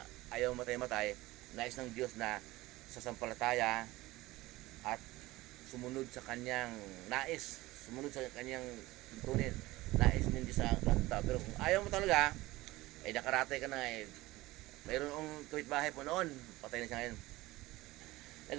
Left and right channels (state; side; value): quieter; left; 19.0 dB